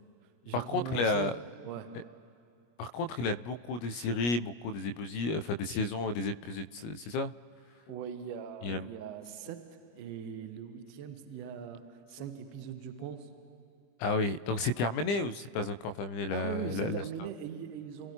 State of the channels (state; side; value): late; right; 25 ms